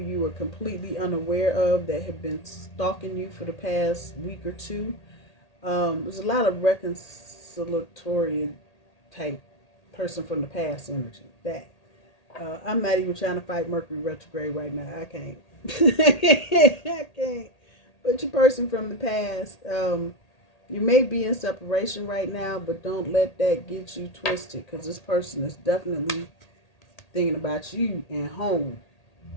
are completely unaware of that have been stalking you for the past week or 2. There's a lot of reconciliatory type person from the past energy. That I'm not even trying to fight Mercury retrograde right now. I can't. I can't. But your person from the past, you may be in separation right now, but don't let that get you twisted, because this person is definitely thinking about you and home.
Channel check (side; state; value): right; late; 1.8 ms